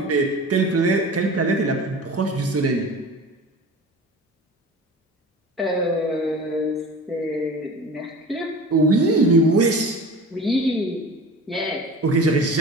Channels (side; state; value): both; normal; correlation 0.37